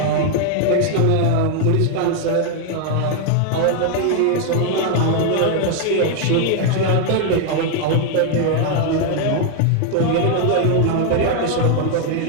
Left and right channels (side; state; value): both; different; correlation 0.00